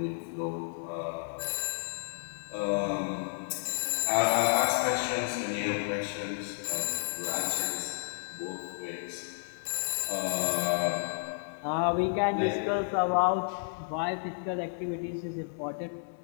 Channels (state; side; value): silent; right; digital silence